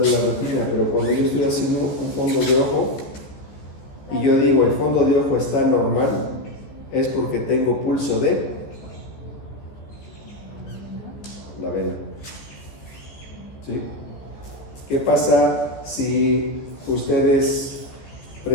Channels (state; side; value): late; right; 14 ms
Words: de la retina, pero cuando yo estoy haciendo un fondo de ojo y yo digo el fondo de ojo está normal, es porque tengo pulso de la vena. ¿Sí? ¿Qué pasa si ustedes